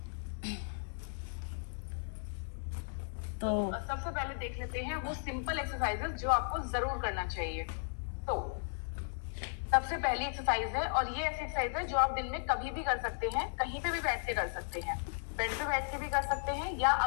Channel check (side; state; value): right; silent; digital silence